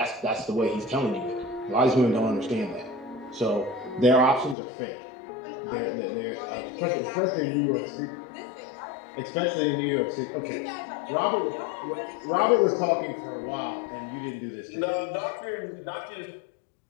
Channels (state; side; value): drops out; right; at 4.5 s